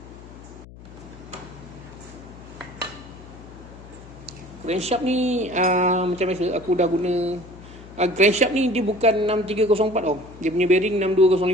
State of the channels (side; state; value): left; noise; hum, 18 dB below the sound